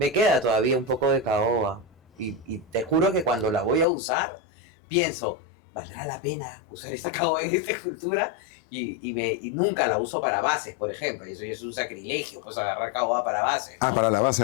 queda todavía un poco de caoba. Y te juro que cuando la voy a usar, pienso, ¿valdrá la pena usar esta caoba en esta escultura? Y nunca la uso para bases, por ejemplo. Y eso es un sacrilegio, pues agarrar caoba para bases, ¿no? Para la base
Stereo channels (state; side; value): drops out; right; at 3.9 s